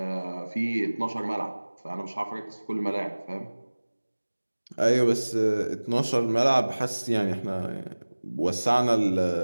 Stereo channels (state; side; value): inverted; both; correlation -1.00